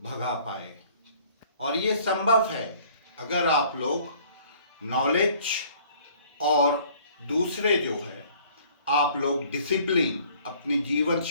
पाए। और ये संभव है अगर आप लोग नॉलेज और दूसरे जो है आप लोग डिसिप्लिन अपनी जीवन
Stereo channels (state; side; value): inverted; both; correlation -0.56